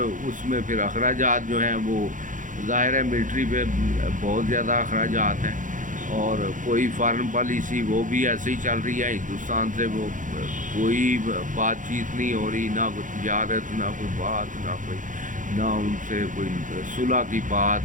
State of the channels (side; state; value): left; late; 0.38 ms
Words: उसमें फिर अखराजात जो हैं वो ज़ाहिर है मिलिट्री पे बहुत ज़्यादा अखराजात हैं, और कोई फॉरेन पॉलिसी वो भी ऐसे ही चल रही है, हिंदुस्तान से वो कोई बातचीत नहीं हो रही, ना कोई तिजारत, ना कोई बात, ना उनसे कोई सुलह की बात,